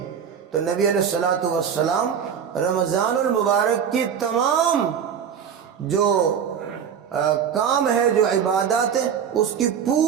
تو نبی علیہ الصلوۃ والسلام رمضان المبارک کی تمام جو کام ہے، جو عبادات ہے، اس کی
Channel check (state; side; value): quieter; left; 7.8 dB